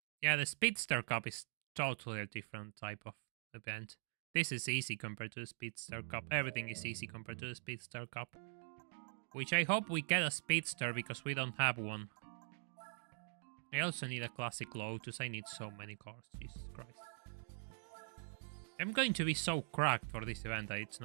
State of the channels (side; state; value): left; silent; digital silence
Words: Yeah, the Speedster Cup is totally a different type of event. This is easy compared to the Speedster Cup. Everything is easy compared to the Speedster Cup. Which I hope we get a Speedster because we don't have one. I also need a Classic Lotus. I need so many cars. Jesus Christ. I'm going to be so cracked for this event that it's